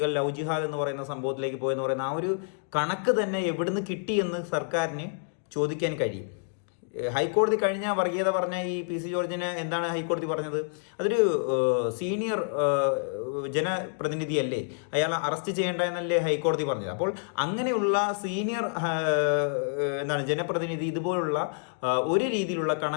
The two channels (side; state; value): right; silent; digital silence